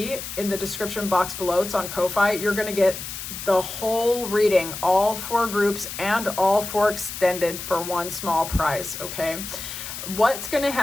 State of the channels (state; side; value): noise; left; hiss, 8 dB below the sound